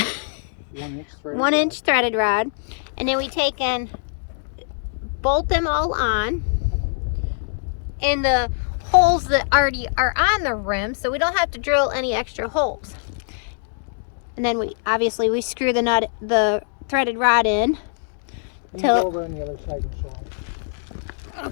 1-inch threaded rod. And then we take and bolt them all on in the holes that already are on the rim, so we don't have to drill any extra holes. And then we screw the threaded rod in. Go over on the other side and show them.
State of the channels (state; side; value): silent; right; digital silence